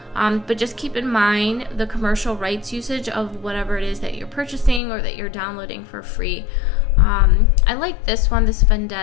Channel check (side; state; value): right; drops out; at 4.8 s